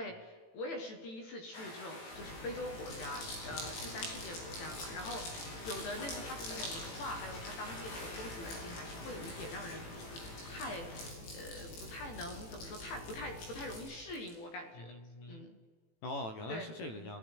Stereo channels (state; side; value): late; right; 18 ms